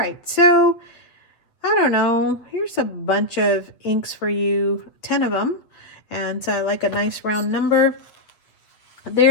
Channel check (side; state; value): right; late; 8.5 ms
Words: so I don't know. Here's a bunch of inks for you, 10 of them. And so I like a nice round number.